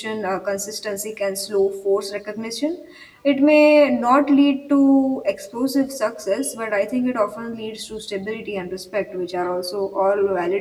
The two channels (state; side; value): identical; both; correlation 1.00